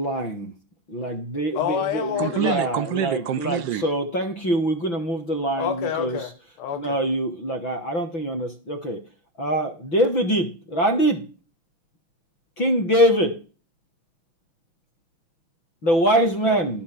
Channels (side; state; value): right; late; 6.0 ms